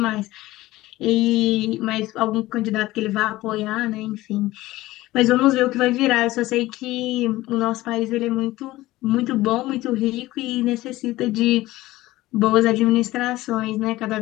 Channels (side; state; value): right; quieter; 17.4 dB